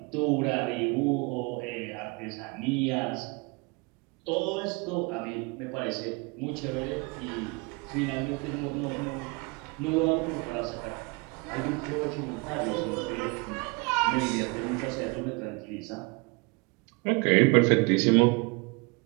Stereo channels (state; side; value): quieter; left; 29.2 dB